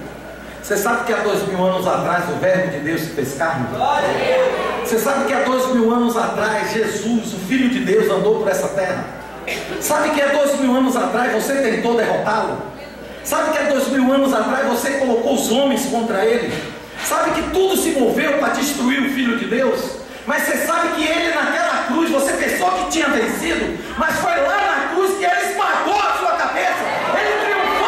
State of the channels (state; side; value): identical; both; correlation 1.00